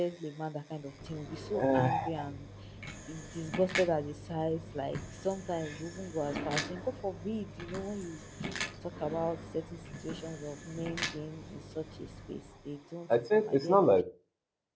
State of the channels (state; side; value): identical; both; correlation 1.00